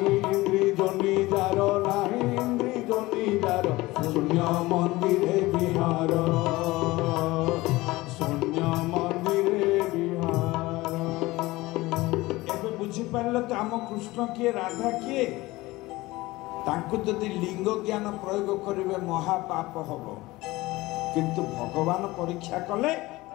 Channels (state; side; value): quieter; right; 19.8 dB